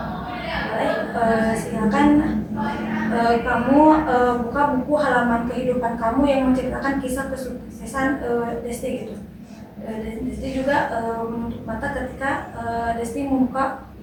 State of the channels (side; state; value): both; identical; correlation 1.00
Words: silakan kamu buka buku halaman kehidupan kamu yang menceritakan kisah kesuksesan Desti gitu. Desti juga menutup mata ketika Desti membuka